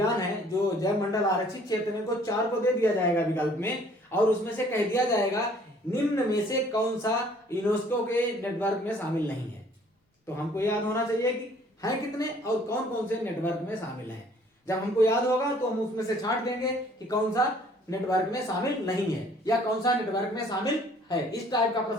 है जो जैव मंडल आरक्षित क्षेत्र में, को 4 को दे दिया जाएगा विकल्प में, और उसमें से कह दिया जाएगा निम्न में से कौन सा यूनेस्को के नेटवर्क में शामिल नहीं है। तो हमको याद होना चाहिए कि है कितने और कौन कौन से नेटवर्क में शामिल हैं। जब हमको याद होगा तो हम उसमें से छांट देंगे कि कौन सा नेटवर्क में शामिल नहीं है या कौन सा नेटवर्क में शामिल है। इस टाइप का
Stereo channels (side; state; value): both; normal; correlation 0.57